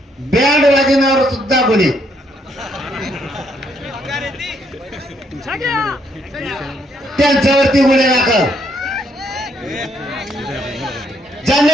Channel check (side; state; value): both; normal; correlation 0.72